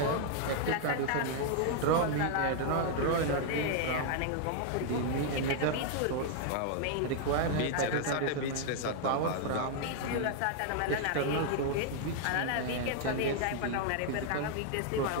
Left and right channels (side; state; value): both; different; correlation 0.00